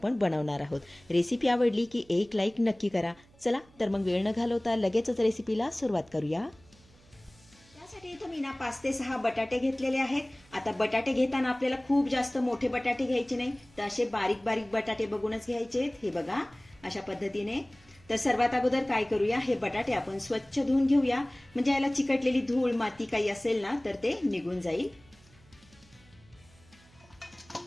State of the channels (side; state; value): right; noise; hum, 28 dB below the sound